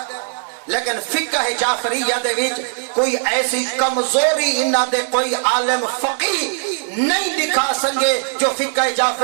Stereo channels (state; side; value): silent; left; 59 dB below the other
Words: لیکن فقہ جعفریہ دے وچ کوئی ایسی کمزوری انہاں دے کوئی عالم فقیہ نہیں دکھا سکے جو فقہ